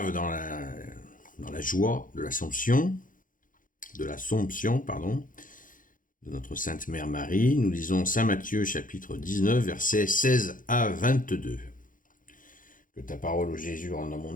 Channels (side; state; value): right; late; 0.39 ms